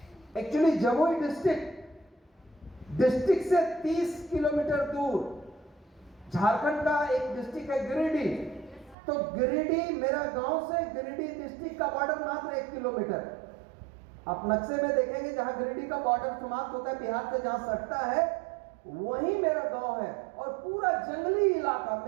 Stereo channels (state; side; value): drops out; left; at 9.0 s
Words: एक्चुअली जमुई डिस्ट्रिक्ट से 30 किलोमीटर दूर झारखंड का एक डिस्ट्रिक्ट है गिरिडीह। तो गिरिडीह मेरा गांव से गिरिडीह डिस्ट्रिक्ट का बॉर्डर मात्र 1 किलोमीटर। आप नक्शे में देखेंगे जहां गिरिडीह का बॉर्डर समाप्त होता है बिहार से, जहां सटता है वही मेरा गांव है। और पूरा जंगली इलाका,